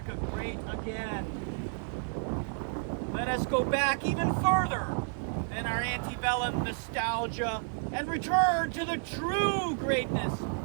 great again, let us go back even further than our antebellum nostalgia and return to the true greatness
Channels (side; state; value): left; silent; 56 dB below the other